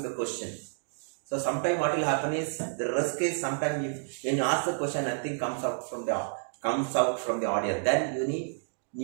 the question. So sometimes what will happen is, the risk is sometimes when you ask the question, nothing comes out from the audience. Then you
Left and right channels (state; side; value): silent; left; digital silence